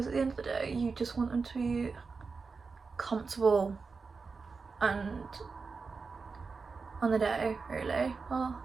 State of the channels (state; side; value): quieter; left; 4.7 dB